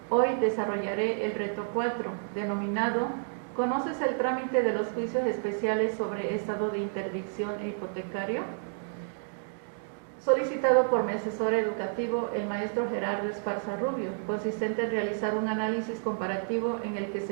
Hoy desarrollaré el reto 4, denominado ¿Conoces el trámite de los juicios especiales sobre estado de interdicción e hipotecario? Solicitado por mi asesor educativo, el maestro Gerardo Esparza Rubio, consistente en realizar un análisis comparativo en el que se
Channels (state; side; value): silent; left; digital silence